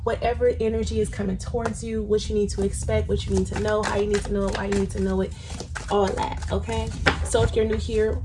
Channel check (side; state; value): both; identical; correlation 1.00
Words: Whatever energy is coming towards you, what you need to expect, what you need to know, how you need to know it, why you need to know it, all that, okay? So if you're new here,